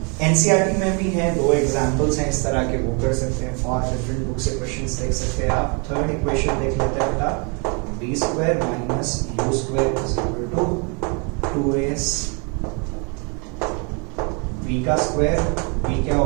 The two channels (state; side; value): quieter; left; 34.5 dB